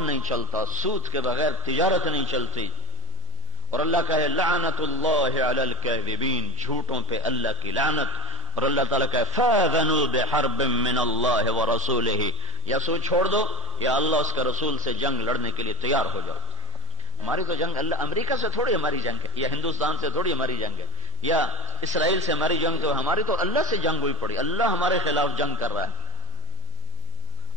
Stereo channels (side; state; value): right; noise; hum, 18 dB below the sound